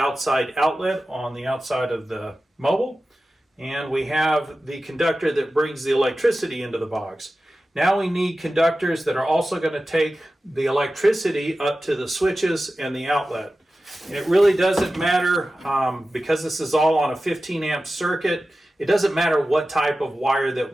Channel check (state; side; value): normal; both; correlation 0.94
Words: outlet on the outside of the mobile, and we have the conductor that brings the electricity into the box. Now we need conductors that are also going to take the electricity up to the switches and the outlet. It really doesn't matter, because this is all on a 15 amp circuit, it doesn't matter what type of wire that